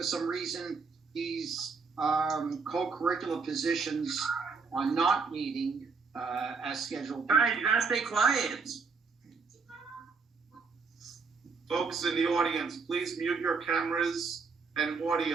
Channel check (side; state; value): left; quieter; 4.8 dB